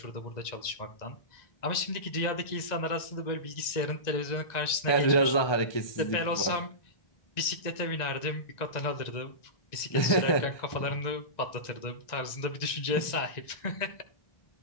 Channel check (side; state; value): right; late; 1.9 ms